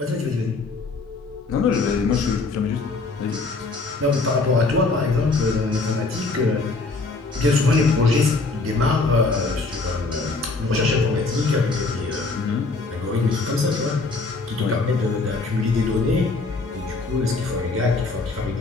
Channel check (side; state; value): right; quieter; 3.7 dB